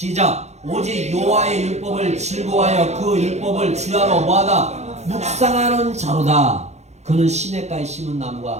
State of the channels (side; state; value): left; late; 0.32 ms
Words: 오직 여호와의 율법을 즐거워하여 그 율법을 주야로 뭐하다? 묵상하는 자로다. 그는 시냇가에 심은